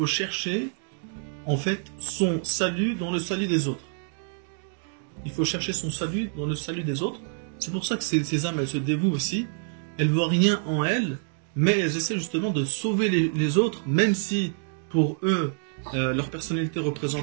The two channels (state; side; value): silent; left; digital silence